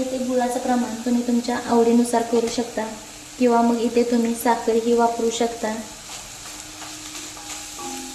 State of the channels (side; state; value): both; identical; correlation 1.00